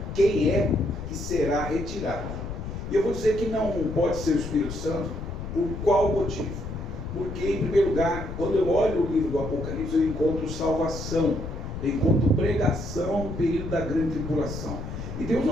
quem é que será retirado. E eu vou dizer que não pode ser o Espírito Santo, por qual motivo? Porque, em primeiro lugar, quando eu olho o livro do Apocalipse, eu encontro salvação. enquanto pregação no período da grande tribulação. E Deus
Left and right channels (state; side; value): noise; left; rumble, 7 dB below the sound